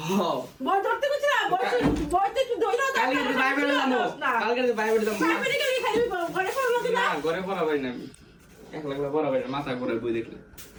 হ্যাঁ বই ধরতে গেছিলাম বইতে একটু দইরা কালকে তো বাইরে যাবো কালকে তো বাইরে যাবো বাইরে গেলে খালি ঘরে পড়লো কি না না ঘরে পড়া পারি না আমি একলা পড়া পারি না মাথা ঘুরে বই দেখলে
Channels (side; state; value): both; identical; correlation 1.00